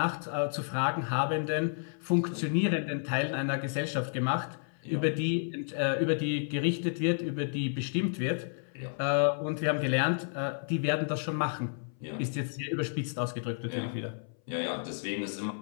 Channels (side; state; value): right; silent; 57 dB below the other